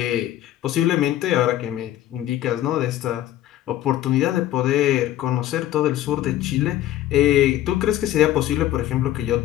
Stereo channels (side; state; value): right; quieter; 13.3 dB